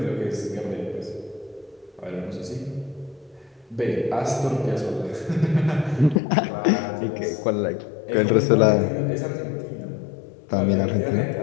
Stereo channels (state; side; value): drops out; right; at 6.2 s